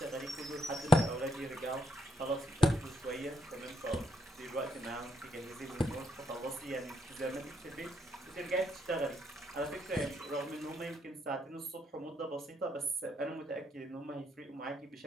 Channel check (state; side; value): normal; both; correlation 0.75